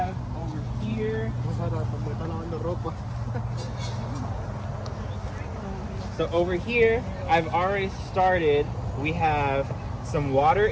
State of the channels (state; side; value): identical; both; correlation 1.00